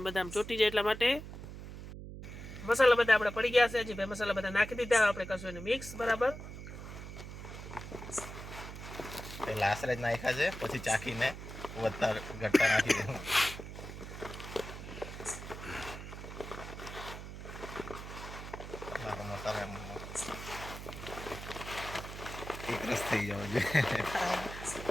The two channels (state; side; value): noise; right; hum, 10 dB below the sound